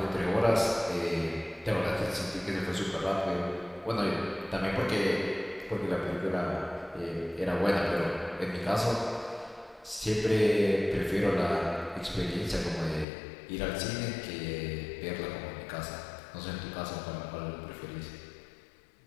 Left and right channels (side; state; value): right; drops out; at 13.1 s